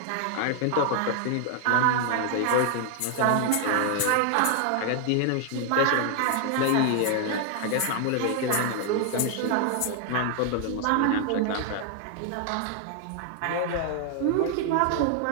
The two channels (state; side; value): different; both; correlation 0.00